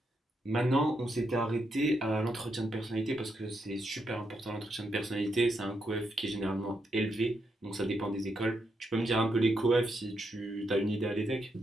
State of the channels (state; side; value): normal; both; correlation 0.81